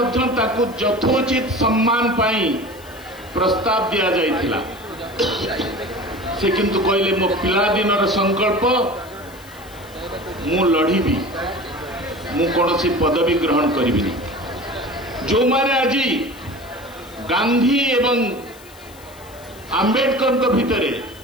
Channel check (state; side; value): noise; left; hiss, 23 dB below the sound